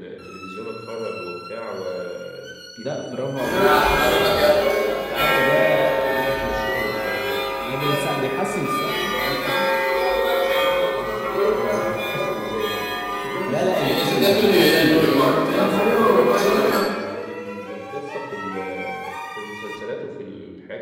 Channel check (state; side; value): identical; both; correlation 1.00